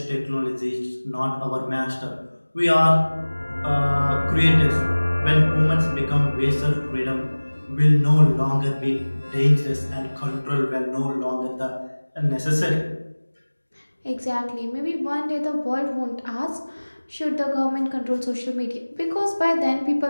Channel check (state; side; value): inverted; both; correlation -1.00